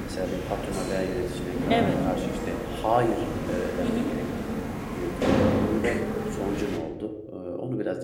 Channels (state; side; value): identical; both; correlation 1.00